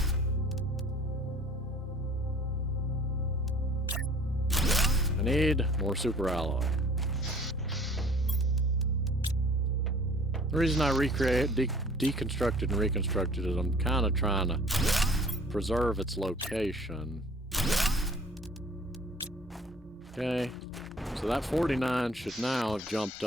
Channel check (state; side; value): normal; both; correlation 0.51